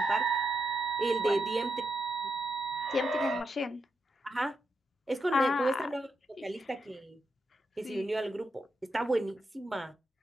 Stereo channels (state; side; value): normal; both; correlation 0.83